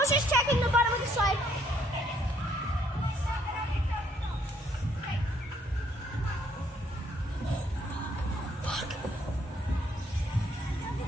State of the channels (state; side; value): normal; both; correlation 0.67